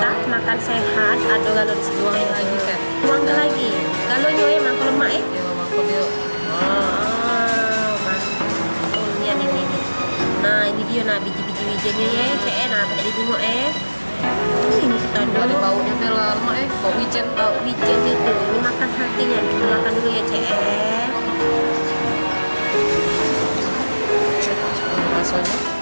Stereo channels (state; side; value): inverted; both; correlation -1.00